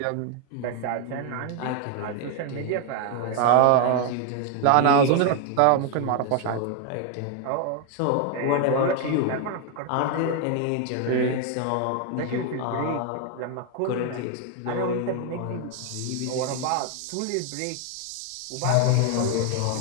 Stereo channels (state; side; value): different; both; correlation 0.00